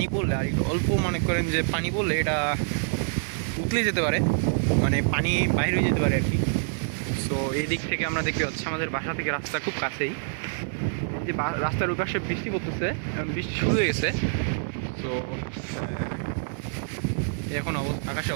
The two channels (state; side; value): silent; left; digital silence